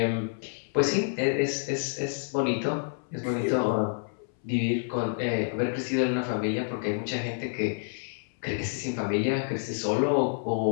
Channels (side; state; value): right; silent; 59 dB below the other